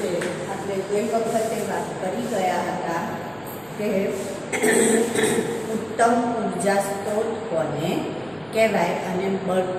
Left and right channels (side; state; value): right; noise; rumble, 30 dB below the sound